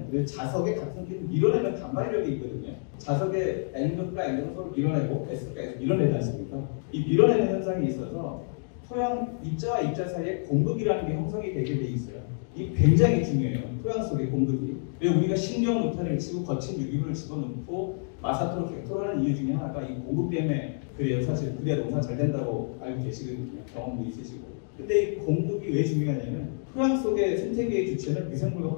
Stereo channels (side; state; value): right; silent; digital silence